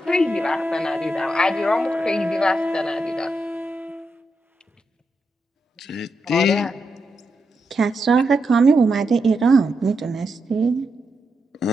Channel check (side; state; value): both; normal; correlation 0.85